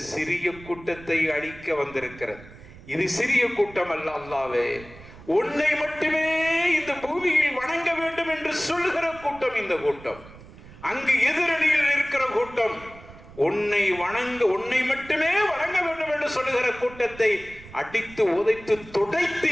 சிறிய கூட்டத்தை அழிக்க வந்திருக்கிறது. இது சிறிய கூட்டம் அல்ல. அல்லாஹ்வே, உன்னை மட்டுமே இந்த பூமியில் வணங்க வேண்டும் என்று சொல்கிற கூட்டம் இந்த கூட்டம். அங்கு எதிரணியில் இருக்கிற கூட்டம் உன்னை மட்டுமே வணங்க வேண்டும் என்று சொல்லுகிற கூட்டத்தை அடித்து உதைத்து துடைத்து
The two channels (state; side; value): noise; right; rumble, 19 dB below the sound